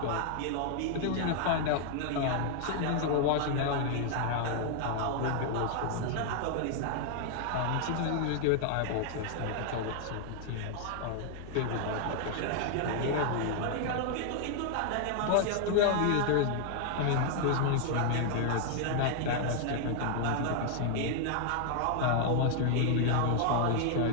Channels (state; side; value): different; both; correlation 0.00